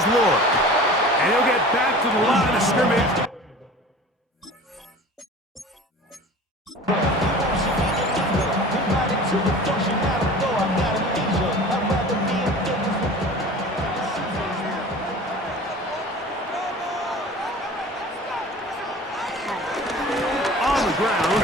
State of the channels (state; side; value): normal; both; correlation 0.40